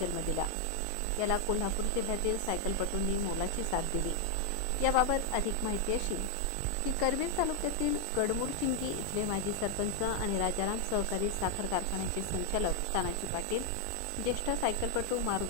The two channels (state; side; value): different; both; correlation 0.00